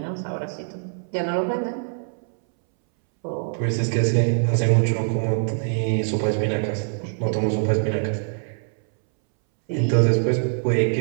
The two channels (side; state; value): left; silent; 63 dB below the other